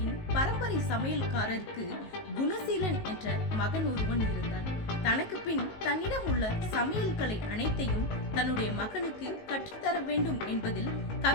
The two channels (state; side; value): late; right; 19 ms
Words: பரம்பரை சமையல்காரருக்கு குணசீலன் என்ற மகன் ஒருவன் இருந்தான். தனக்கு பின் தன்னிடம் உள்ள சமையல்களை அனைத்தையும் தன்னுடைய மகனுக்கு கற்றுத்தர வேண்டும் என்பதில்